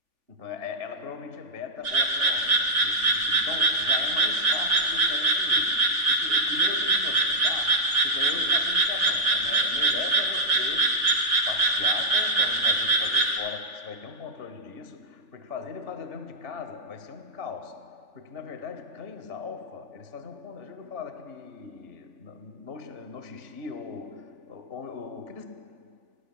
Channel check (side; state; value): left; late; 3.4 ms